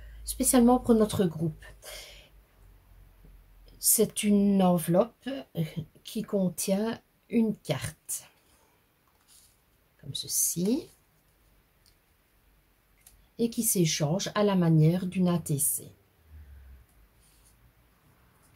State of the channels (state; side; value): identical; both; correlation 1.00